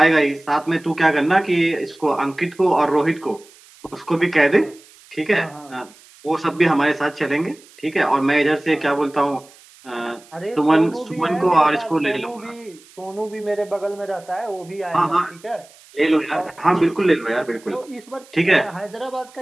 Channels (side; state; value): right; noise; hiss, 25 dB below the sound